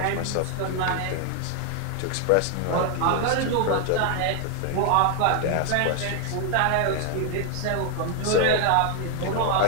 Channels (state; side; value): different; both; correlation 0.00